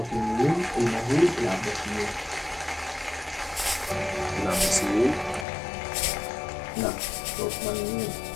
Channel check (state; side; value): drops out; right; at 5.5 s